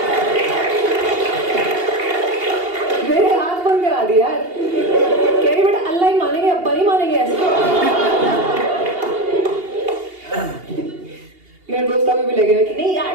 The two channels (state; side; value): late; left; 2.8 ms